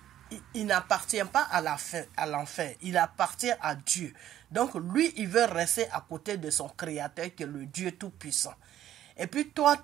n'appartient pas à l'enfer. Il appartient à Dieu. Donc, lui, il veut rester à côté de son Créateur, qui est le Dieu Tout-Puissant. Et puis, toi,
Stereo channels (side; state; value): left; quieter; 11.9 dB